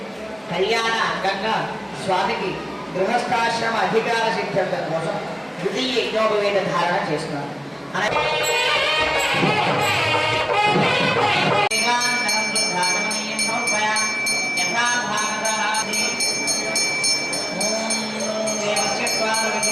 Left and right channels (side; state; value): both; identical; correlation 1.00